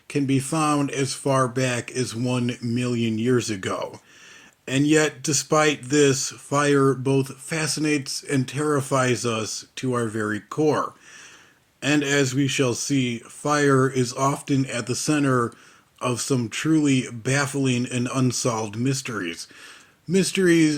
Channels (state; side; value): identical; both; correlation 1.00